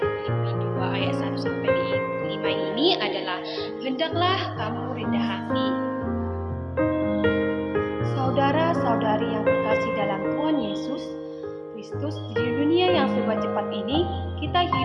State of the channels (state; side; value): identical; both; correlation 1.00